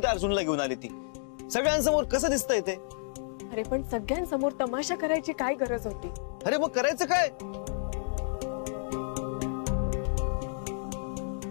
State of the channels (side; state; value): right; silent; digital silence